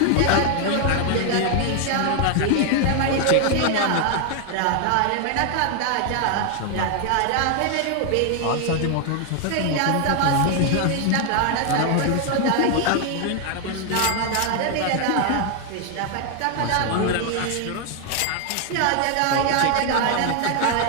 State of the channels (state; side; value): different; both; correlation 0.00